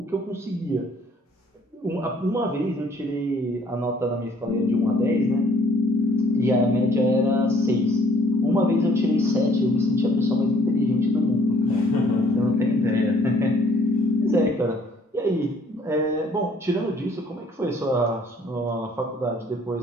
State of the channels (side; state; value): both; normal; correlation 0.59